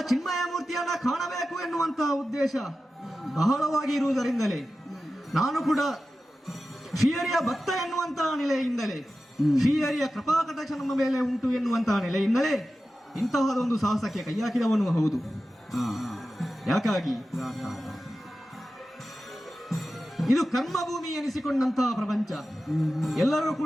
ಚಿನ್ಮಯ ಮೂರ್ತಿಯನ್ನ ಕಾಣಬೇಕು ಎನ್ನುವಂತಹ ಉದ್ದೇಶ ಬಹಳವಾಗಿ ಇರುವುದರಿಂದಲೇ ನಾನು ಕೂಡ ಶ್ರೀಹರಿಯ ಭಕ್ತ ಎನ್ನುವಂತಹ ನೆಲೆಯಿಂದಲೇ, ಶ್ರೀಹರಿಯ ಕೃಪಾಕಟಾಕ್ಷ ನಮ್ಮ ಮೇಲೆ ಉಂಟು ಎನ್ನುವಂತಹ ನೆಲೆಯಿಂದಲೇ ಇಂತಹದೊಂದು ಸಾಹಸಕ್ಕೆ ಕೈ ಹಾಕಿದವನು ಹೌದು. ಯಾಕಾಗಿ ಇದು ಕರ್ಮಭೂಮಿ ಎನಿಸಿಕೊಂಡಂತಹ ಪ್ರಪಂಚ. ಎಲ್ಲರೂ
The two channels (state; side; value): normal; both; correlation 0.93